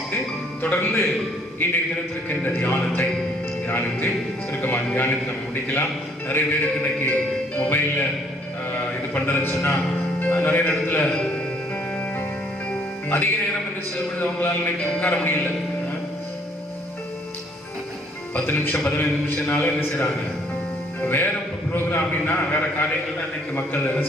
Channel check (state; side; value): normal; both; correlation 0.63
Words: தொடர்ந்து இன்றைய தினத்திற்கு இந்த தியானத்தை தியானித்து சுருக்கமாக தியானித்து நம்ம முடிக்கலாம். நிறைய பேருக்கு இன்னைக்கு மொபைல்ல இது பண்றதுன்னு சொன்னா நிறைய இடத்துல அதிக நேரம் என்று செல்வது அவங்களால இன்னைக்கு உட்கார முடியல. 10 நிமிஷம் 15 நிமிஷம்னால என்ன செய்யறாங்க, வேற ப்ரோக்ராம்னா வேற காரியங்கள் தான் இன்னைக்கு மக்கள் என்ன